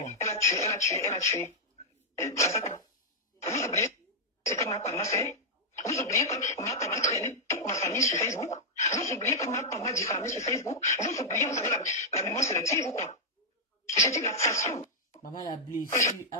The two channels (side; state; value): both; normal; correlation -0.06